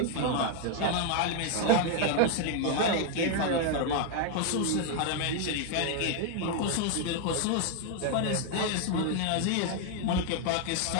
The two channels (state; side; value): different; both; correlation 0.00